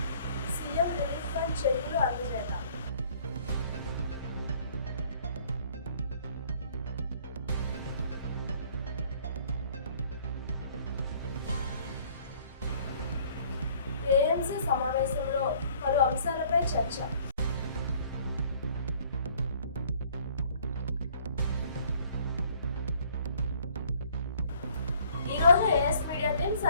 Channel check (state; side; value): inverted; both; correlation -0.57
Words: సీఎం రిలీఫ్ ఫండ్ చెక్కులు అందజేత, ఏఎంసీ సమావేశంలో పలు అంశాలపై చర్చ. ఈ రోజు ఏఎస్ మీడియా టీం